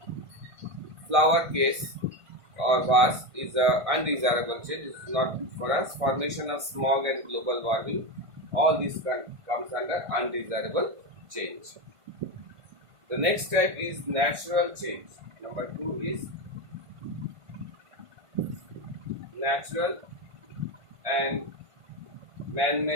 flower case or vase is a undesirable change. It is not good for us. Formation of smog and global warming, all this comes under undesirable change. The next type is natural change. Number 2 is natural and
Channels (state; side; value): late; left; 1.5 ms